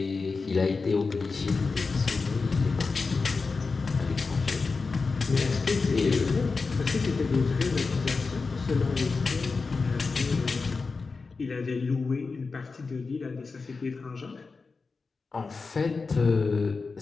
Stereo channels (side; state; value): right; quieter; 4.3 dB